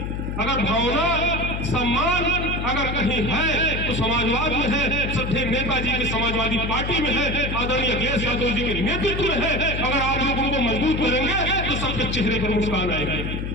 अगर भावना सम्मान अगर कहीं है तो समाजवाद में है, श्रद्धेय नेताजी के समाजवादी पार्टी में है, आदरणीय अखिलेश यादव जी के नेतृत्व में है। अगर आप लोग उनको मजबूत करेंगे तो सबके चेहरे पर मुस्कान आएगी।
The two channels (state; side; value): noise; left; hum, 4 dB below the sound